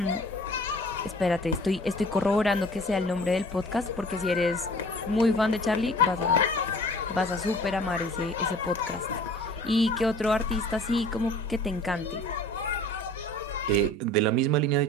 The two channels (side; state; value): both; normal; correlation 0.47